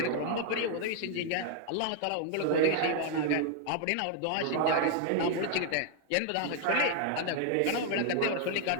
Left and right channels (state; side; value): different; both; correlation 0.00